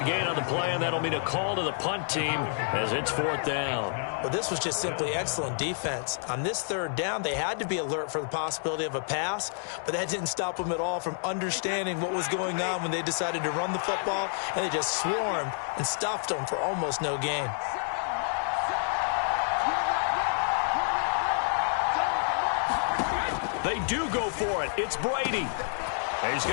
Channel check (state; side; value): silent; right; digital silence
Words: gain on the play, and that'll mean a call to the punt team as it's 4th down. Well, this was just simply excellent defense. On this third down, they had to be alert for the possibility of a pass, but that didn't stop them at all from understanding what was going on when they decided to run the football, and they just swarmed and stuffed them for almost no gain. They do go for it. It's Brady. He's